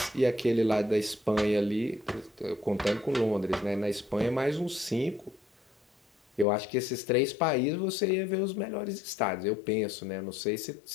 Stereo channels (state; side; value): drops out; right; at 6.5 s